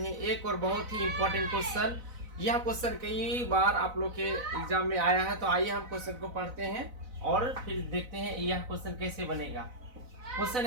हैं एक और बहुत ही इम्पोर्टेंट क्वेश्चन। यह क्वेश्चन कई बार आप लोग के एग्जाम में आया है। तो आइए हम क्वेश्चन को पढ़ते हैं और फिर देखते हैं यह क्वेश्चन कैसे बनेगा। क्वेश्चन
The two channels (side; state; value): left; late; 4.0 ms